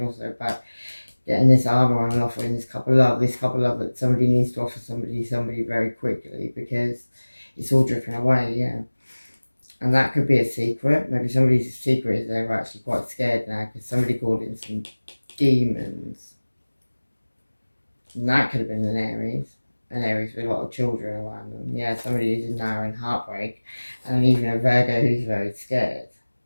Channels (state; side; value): inverted; both; correlation -1.00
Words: also about getting this armor on and offering this couple love that somebody needs to offer somebody very quickly because it's all dripping away. Yeah. And that could be a secret. Maybe somebody's secret is they're actually quite scared now because somebody called in some demons. And that could have been an Aries with a lot of children around them. Yeah, somebody who's now in heartbreak, and even a Virgo who's very scared.